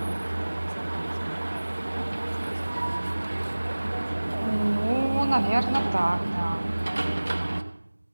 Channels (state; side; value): inverted; both; correlation -1.00